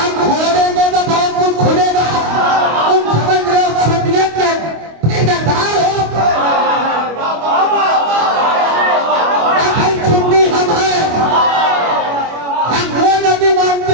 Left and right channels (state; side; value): late; left; 25 ms